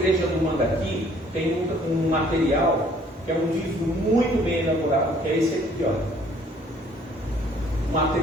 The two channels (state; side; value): normal; both; correlation 0.59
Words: do Mandaqui tem um material que é um livro muito bem elaborado, que é esse aqui, ó. Um